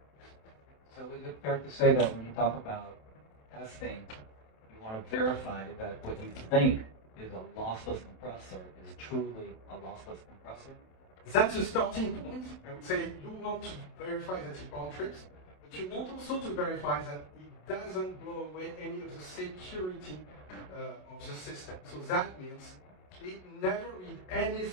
So is it fair to say that when you talk about testing, you want to verify that what you think is a lossless compressor is truly a lossless compressor? That's a starting point. I would say you want to verify that it bound trips, but you want also to verify that it doesn't blow away any of the security of the system. So that means it never read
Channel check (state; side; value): late; right; 27 ms